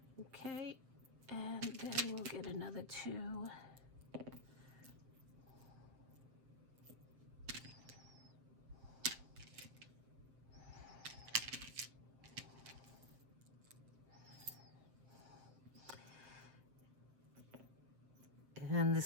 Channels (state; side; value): late; left; 7.6 ms